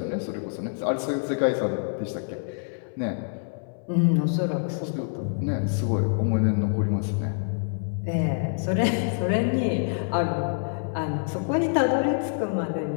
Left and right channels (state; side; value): silent; right; 61 dB below the other